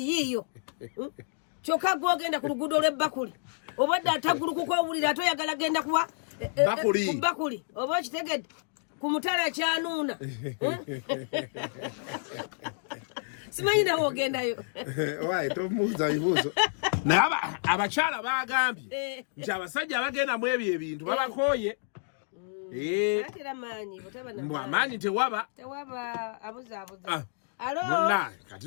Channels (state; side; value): silent; right; digital silence